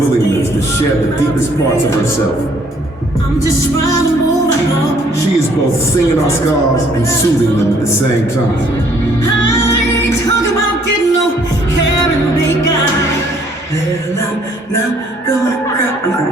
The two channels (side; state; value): both; normal; correlation 0.63